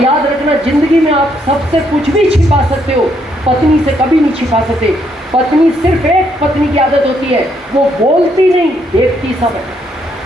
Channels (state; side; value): normal; both; correlation 0.73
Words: रखना, जिंदगी में आप सबसे कुछ भी छिपा सकते हो, पत्नी से कभी नहीं छिपा सकते। पत्नी, सिर्फ एक पत्नी की आदत होती है, वो बोलती नहीं, देखती सब है।